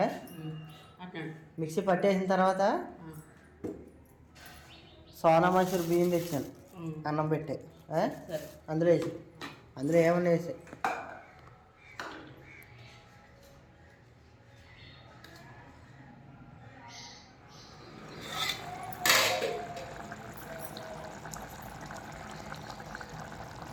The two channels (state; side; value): identical; both; correlation 1.00